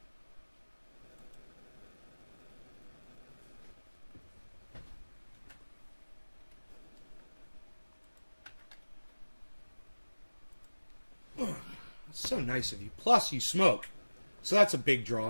That's so nice of you. Plus, you smoke. So that's a big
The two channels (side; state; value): both; inverted; correlation -1.00